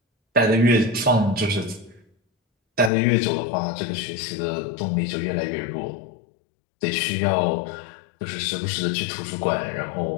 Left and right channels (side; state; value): right; drops out; at 2.9 s